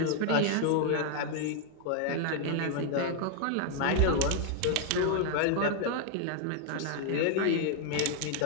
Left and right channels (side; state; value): both; different; correlation 0.00